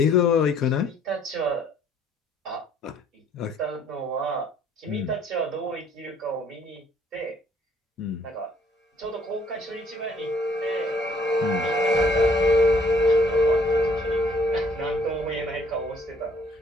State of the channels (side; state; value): both; normal; correlation 0.62